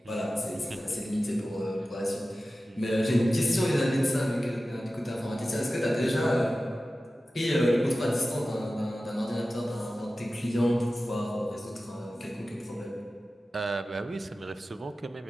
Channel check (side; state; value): both; normal; correlation 0.95